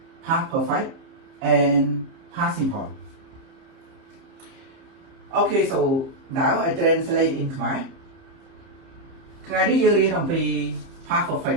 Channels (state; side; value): late; left; 30 ms